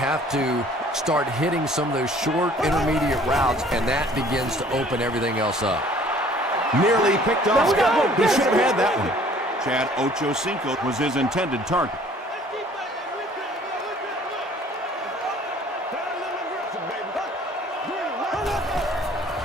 have to start hitting some of those short intermediate routes, and that begins to open everything else up. Nearly picked off. He should have had that one. Chad Ochocinco was his intended target.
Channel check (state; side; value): normal; both; correlation 0.54